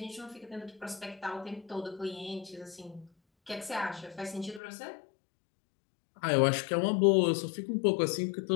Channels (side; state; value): right; drops out; at 4.6 s